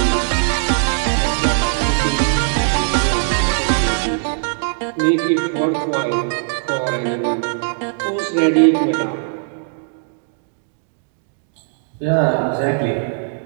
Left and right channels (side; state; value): left; silent; digital silence